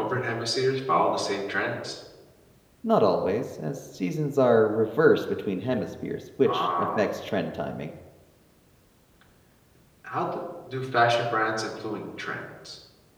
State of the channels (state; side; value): identical; both; correlation 1.00